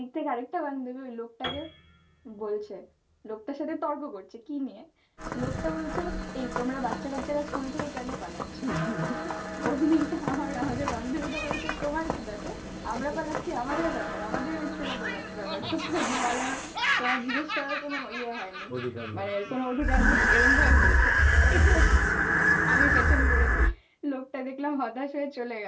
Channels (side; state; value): both; identical; correlation 1.00